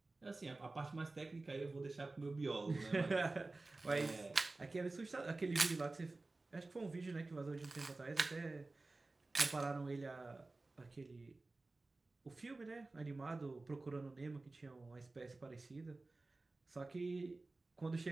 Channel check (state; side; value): quieter; left; 3.3 dB